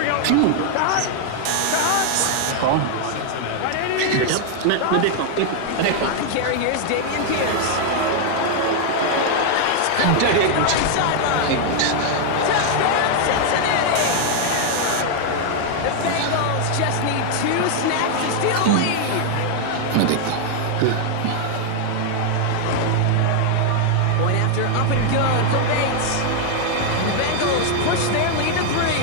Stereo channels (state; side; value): different; both; correlation 0.00